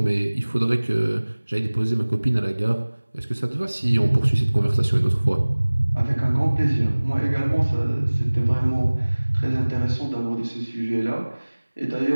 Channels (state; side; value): inverted; both; correlation -1.00